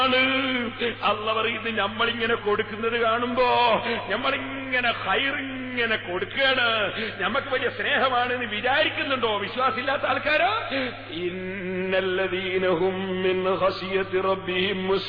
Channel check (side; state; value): both; identical; correlation 1.00